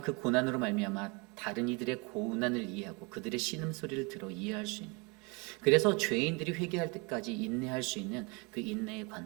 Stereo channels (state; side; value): quieter; left; 29.8 dB